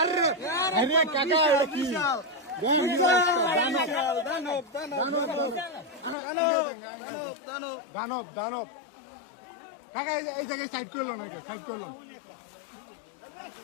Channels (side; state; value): right; drops out; at 6.2 s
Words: দানব কাকা এই জায়গায় সাইড করলো নাকি সাইড করলো।